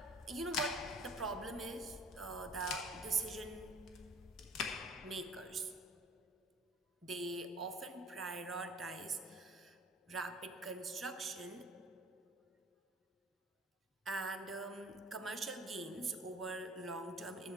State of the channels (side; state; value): both; normal; correlation 0.48